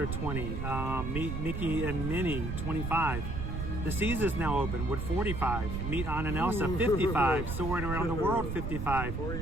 20, Meet Mickey and Minnie 25. The Seas is now open with 45. Meet Anna and Elsa 55. Soaring Around the World 55.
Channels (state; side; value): noise; right; rumble, 4 dB below the sound